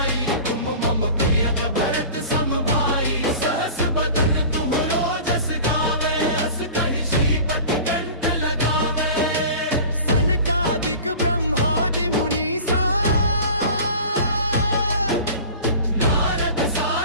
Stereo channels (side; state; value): both; inverted; correlation -0.39